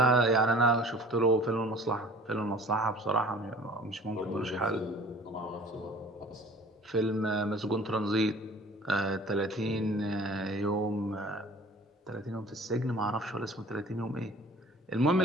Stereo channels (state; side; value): normal; both; correlation 0.47